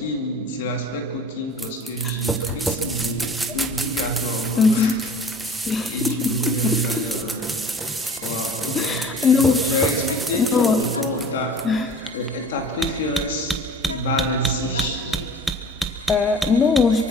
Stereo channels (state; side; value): normal; both; correlation 0.44